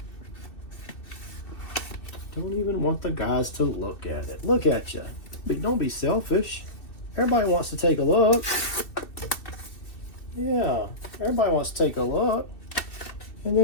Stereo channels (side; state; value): right; late; 2.6 ms